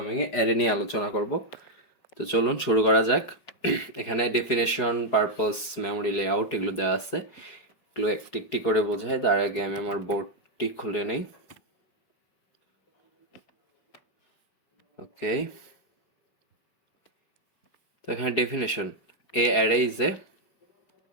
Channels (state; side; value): late; right; 5.1 ms